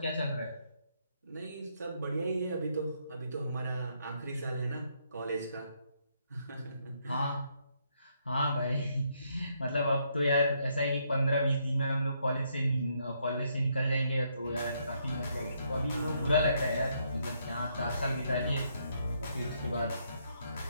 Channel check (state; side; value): inverted; both; correlation -0.74